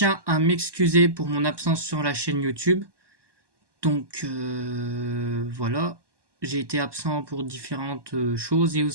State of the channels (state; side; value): late; left; 1.2 ms